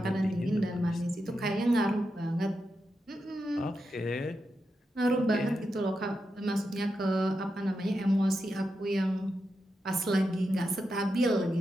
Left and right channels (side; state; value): both; normal; correlation 0.87